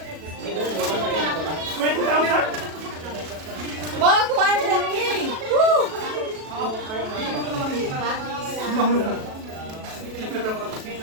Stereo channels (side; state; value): left; late; 37 ms